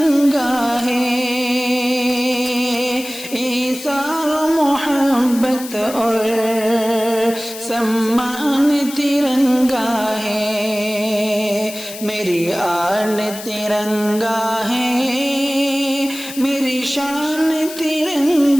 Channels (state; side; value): noise; left; hiss, 12 dB below the sound